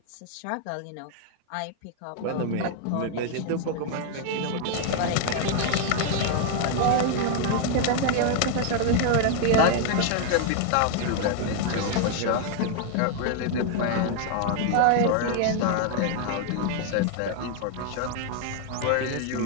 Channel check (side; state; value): both; different; correlation 0.00